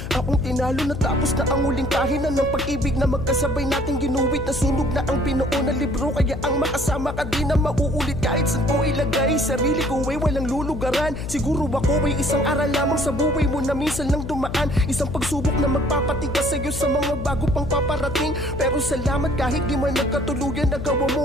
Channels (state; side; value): noise; left; hum, 7 dB below the sound